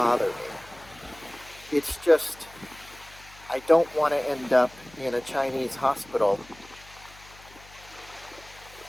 me. It's just I don't want to end up in a Chinese hospital.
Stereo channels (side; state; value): left; noise; hum, 23 dB below the sound